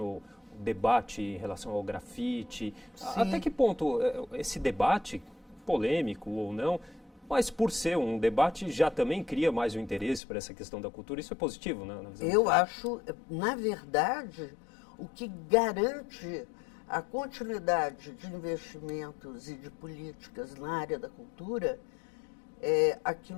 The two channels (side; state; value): right; drops out; at 10.2 s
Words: o debate em relação ao grafite. Sim. Até que ponto esse debate, polêmico ou não, mas por ser um debate já também cria mais o interesse para essa questão da cultura. Isso é positivo, né? Eu acho, na verdade, o que garante a continuidade de investimentos e de políticas na área da cultura é